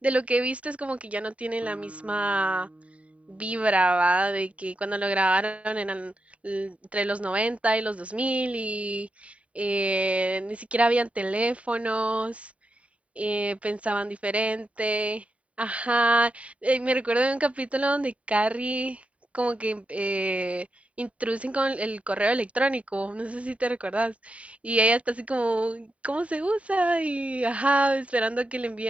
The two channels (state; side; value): late; left; 0.066 ms